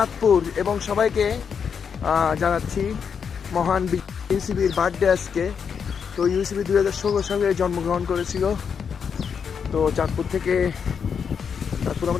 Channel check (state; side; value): quieter; right; 6.7 dB